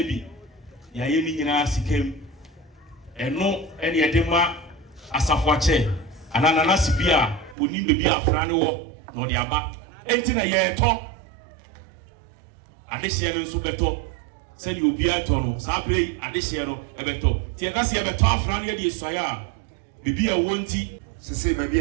Yayini in us came, and no any edema as a watcher, and an anasipia would need to be a frano, nor the abba. Enti ye to adehye no nso beto se ni obi ato sa pre adehye no ebeto tie ka se ebeto afra no ye die soya a bibi a wonti sese baby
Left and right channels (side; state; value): left; drops out; at 7.6 s